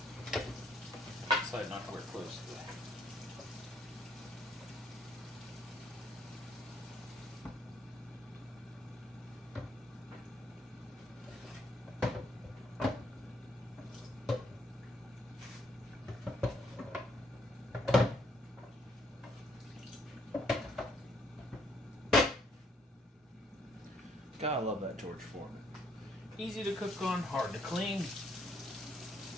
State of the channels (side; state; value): both; normal; correlation 0.70